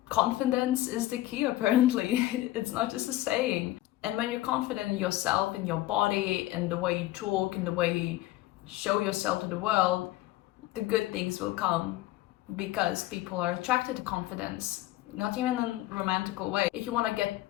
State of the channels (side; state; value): right; quieter; 16.2 dB